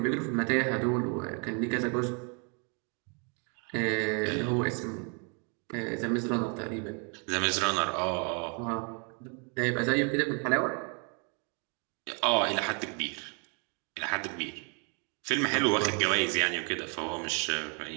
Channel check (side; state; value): left; quieter; 37.4 dB